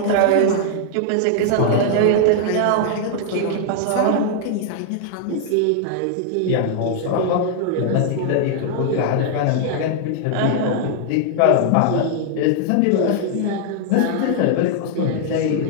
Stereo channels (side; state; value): both; different; correlation -0.01